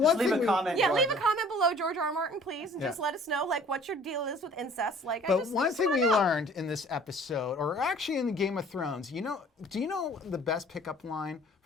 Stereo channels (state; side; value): normal; both; correlation 0.52